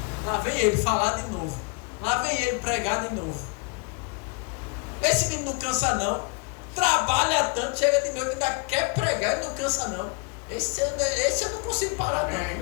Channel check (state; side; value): quieter; right; 32.8 dB